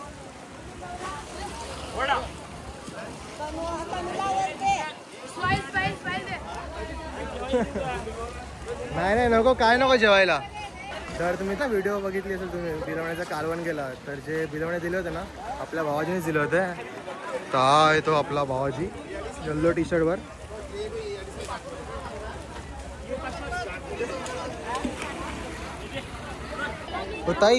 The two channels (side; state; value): both; identical; correlation 1.00